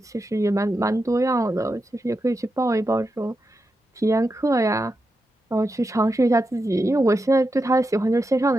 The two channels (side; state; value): both; normal; correlation 0.88